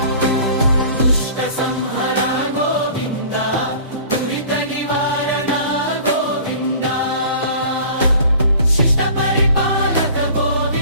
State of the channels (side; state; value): both; inverted; correlation -0.45